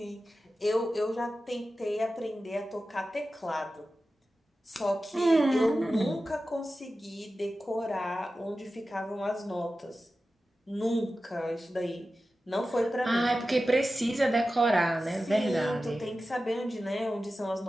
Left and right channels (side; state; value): both; normal; correlation 0.94